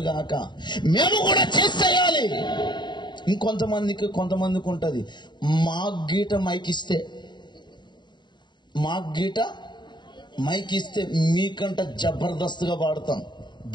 గాక. మేము కూడా చేసేయాలి. కొంతమందికి ఉంటుంది మాకు గీట మైక్ ఇస్తే మీకంట జబర్దస్త్గా వాడతాం.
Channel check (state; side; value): late; right; 0.22 ms